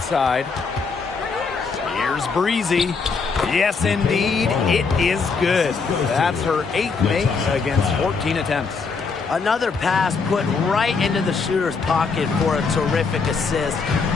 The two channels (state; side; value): quieter; right; 4.9 dB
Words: Here's Breezy. Yes, indeed. It is good. That's her 8th make against 14 attempts. Another pass put right into the shooter's pocket for a terrific assist.